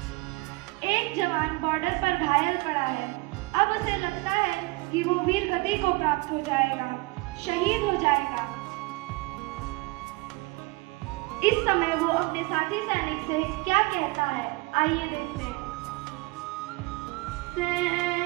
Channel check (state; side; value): quieter; left; 24.2 dB